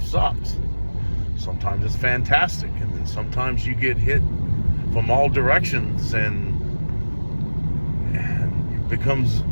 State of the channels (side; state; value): both; inverted; correlation -1.00